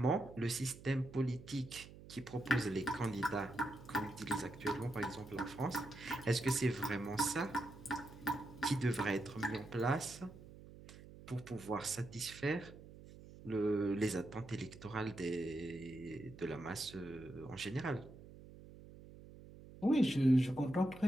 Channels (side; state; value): right; noise; hum, 17 dB below the sound